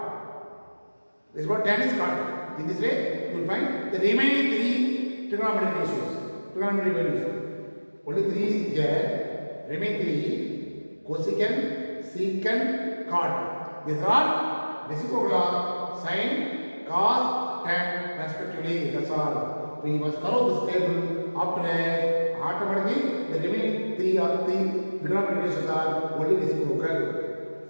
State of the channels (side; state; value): both; inverted; correlation -1.00